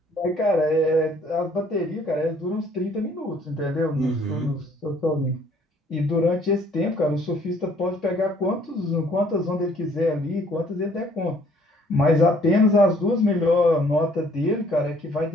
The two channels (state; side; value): normal; both; correlation 0.60